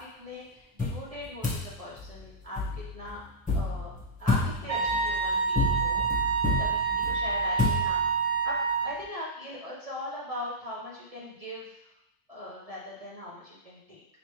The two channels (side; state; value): both; normal; correlation -0.14